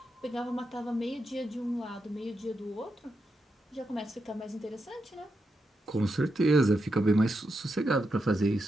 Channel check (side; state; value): both; normal; correlation 0.85